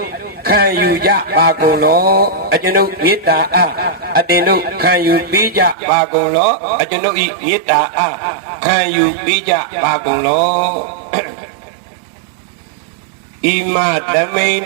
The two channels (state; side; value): drops out; left; at 5.8 s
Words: ခံယူကြပါကုန်လောအကျွန်ုပ်မေတ္တာအားအတင်တို့ခံယူပေးကြပါကုန်လောအကျွန်ုပ်ဤမေတ္တာအားခံယူပေးကြပါကုန်လောဣမတမိန်